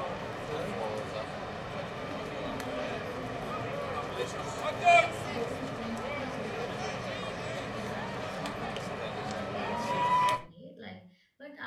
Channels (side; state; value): both; identical; correlation 1.00